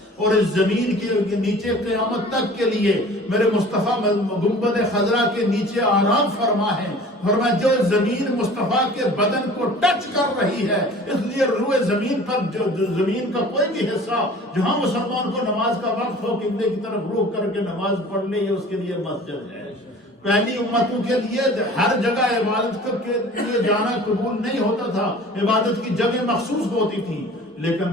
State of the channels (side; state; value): both; normal; correlation 0.45